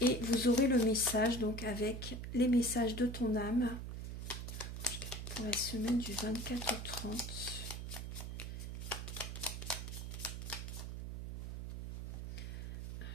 vous aurez le message donc avec les messages de ton âme pour la semaine du 24 au 30.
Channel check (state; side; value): noise; right; hum, 6 dB below the sound